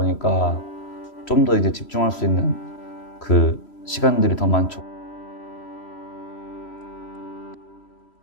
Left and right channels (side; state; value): right; late; 3.1 ms